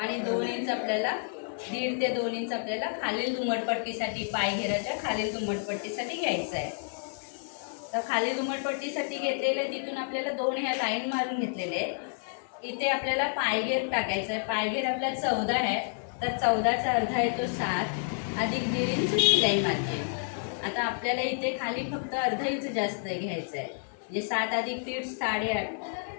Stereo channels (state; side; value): silent; right; digital silence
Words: 2 इंच आपल्याला 1.5 ते 2 इंच आपल्याला खालील दुमटपट्टीसाठी पायघेराच्या खालील दुमटपट्टीसाठी घ्यायचं आहे. तर खाली दुमटपट्टीसाठी घेतलेले तिथून आपल्याला 2 ह्या लाईन मारून घेतलेले आहे. इथे आपल्याला पायघेर टाकायचं आहे. पायघेर आपला 14 आहे तर 14चा अर्धा येतो 7 अधिक 1.5 इंच शिलाई मारते. आता आपल्याला इथे खाली फक्त अर्धा इंच जास्त घ्यायचं आहे म्हणजे 7 अधिक 1.5 8.5